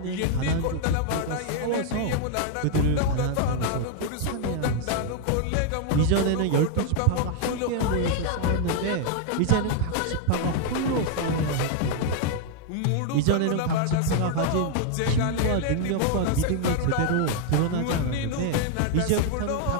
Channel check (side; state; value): both; different; correlation 0.00